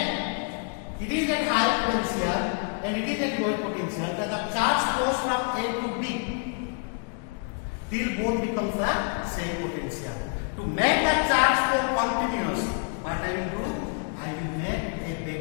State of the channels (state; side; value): quieter; right; 36.8 dB